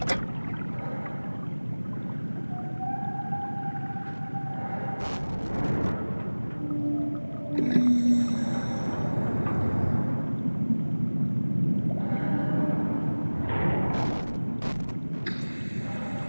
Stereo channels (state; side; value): inverted; both; correlation -1.00